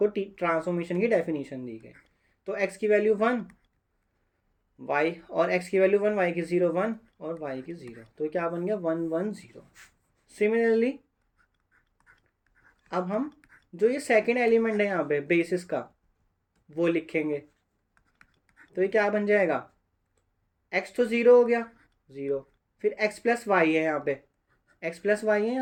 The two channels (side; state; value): both; identical; correlation 1.00